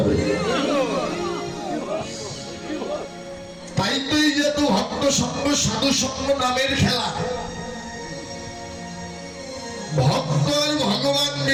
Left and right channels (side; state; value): both; identical; correlation 1.00